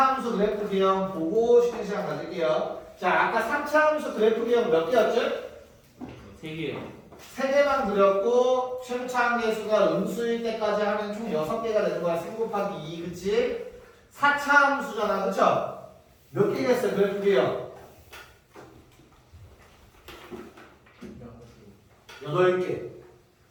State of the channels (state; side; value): identical; both; correlation 1.00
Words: 그래프 기형 보고 쉬는 시간 가질게요. 자, 아까 3차 함수 그래프 기형 몇 개였죠? 3개요. 3개만 그렸고 최고차 함수가 음수일 때까지 하면 총 6개가 되는 거야. 3 곱하기 2, 그치? 4차 함수잖아, 그쵸? 몇 개겠어요, 그래프 기형? 8개.